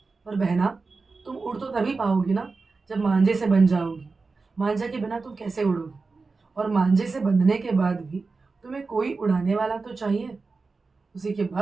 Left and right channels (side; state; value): left; quieter; 4.1 dB